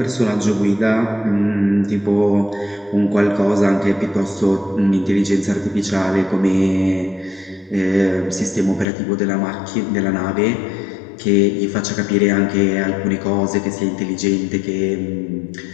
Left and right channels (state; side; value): drops out; right; at 8.8 s